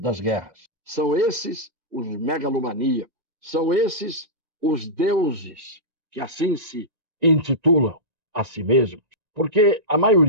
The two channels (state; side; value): late; left; 1.9 ms